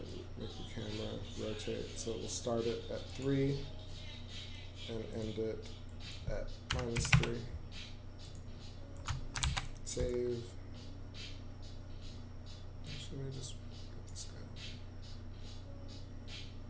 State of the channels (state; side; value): identical; both; correlation 1.00